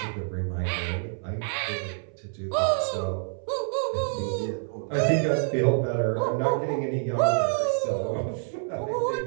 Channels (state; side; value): silent; left; 60 dB below the other